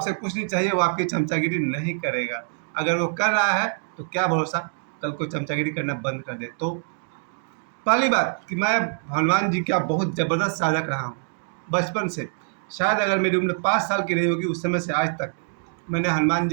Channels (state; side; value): silent; left; 62 dB below the other